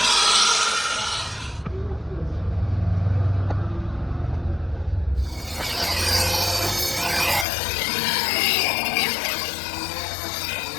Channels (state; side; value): drops out; right; at 7.5 s